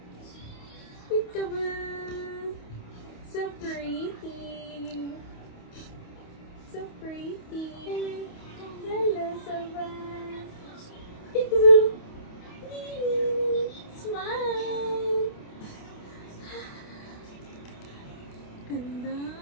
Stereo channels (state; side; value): late; right; 28 ms